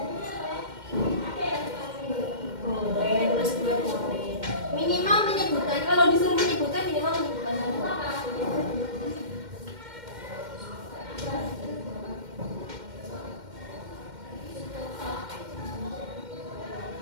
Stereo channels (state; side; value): late; left; 2.1 ms